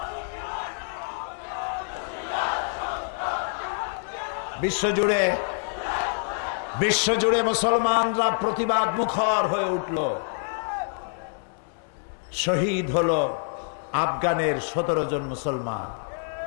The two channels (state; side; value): silent; right; digital silence